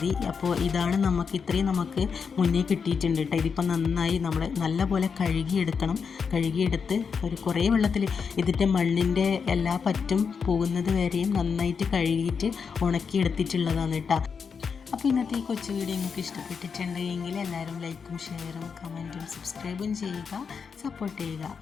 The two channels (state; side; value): quieter; right; 6.0 dB